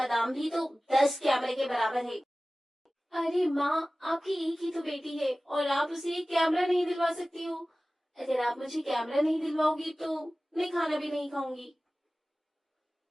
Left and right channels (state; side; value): normal; both; correlation 0.97